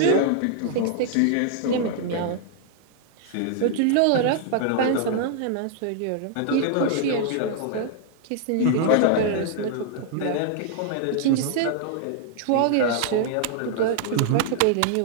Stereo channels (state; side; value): different; both; correlation 0.00